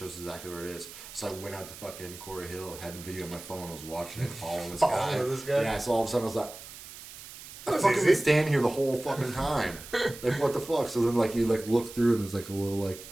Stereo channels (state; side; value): noise; right; hiss, 15 dB below the sound